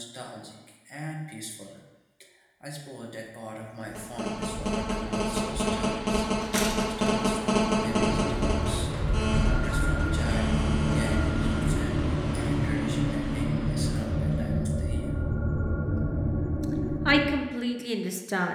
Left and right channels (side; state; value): both; identical; correlation 1.00